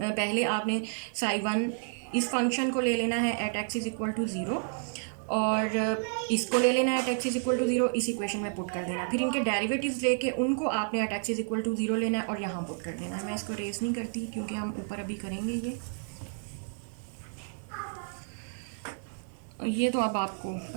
आपने साई वन इस फंक्शन को ले लेना है at X is equal to zero और इसको ले लेना है at X is equal to zero, इस इक्वेशन में पुट कर देना। फिर इनके डेरिवेटिव्स लेके उनको आपने at X is equal to zero लेना है और यहाँ पुट कर देना है। मैं इसको रेस नहीं करती क्योंकि हम ऊपर अभी करेंगे ये तो अब आपको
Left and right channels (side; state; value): left; silent; 57 dB below the other